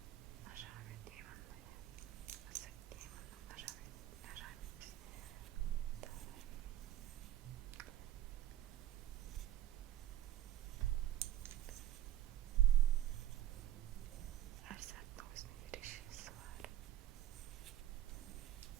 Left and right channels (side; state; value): left; quieter; 12.7 dB